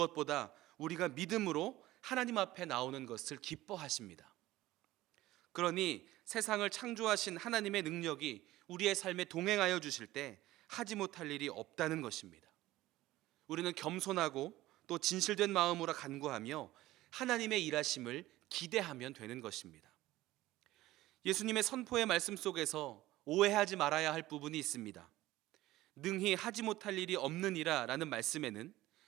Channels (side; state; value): left; quieter; 16.6 dB